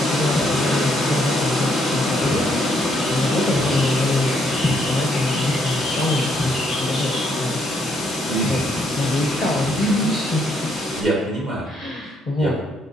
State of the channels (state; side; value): normal; both; correlation 0.72